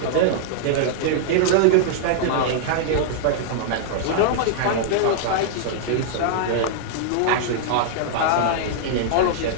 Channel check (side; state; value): both; different; correlation -0.01